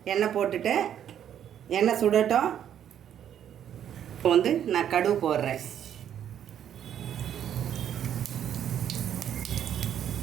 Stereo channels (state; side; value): quieter; left; 9.8 dB